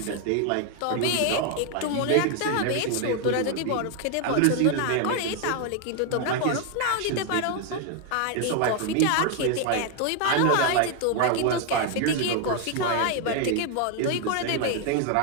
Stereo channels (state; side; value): different; both; correlation 0.01